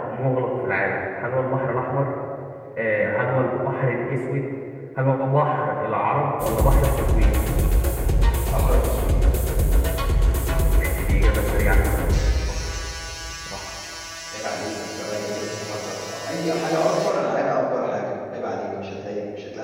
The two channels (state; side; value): identical; both; correlation 1.00